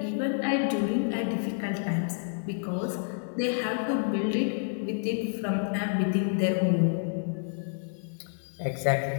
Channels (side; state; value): right; silent; digital silence